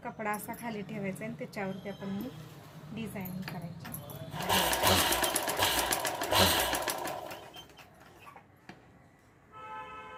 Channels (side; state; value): both; identical; correlation 1.00